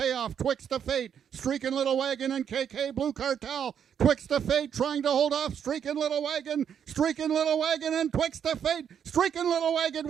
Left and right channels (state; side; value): quieter; left; 8.3 dB